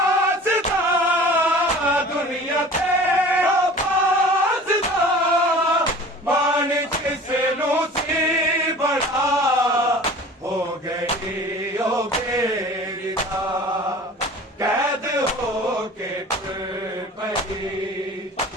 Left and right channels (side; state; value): both; normal; correlation 0.43